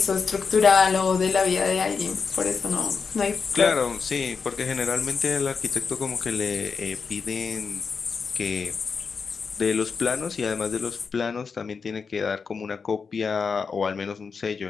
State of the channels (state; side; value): quieter; right; 5.4 dB